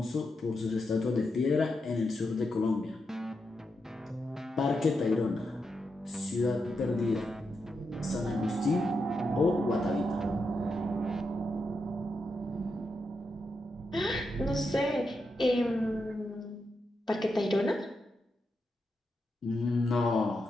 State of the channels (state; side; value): normal; both; correlation 0.85